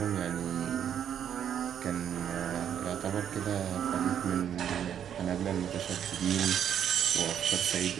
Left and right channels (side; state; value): left; quieter; 9.2 dB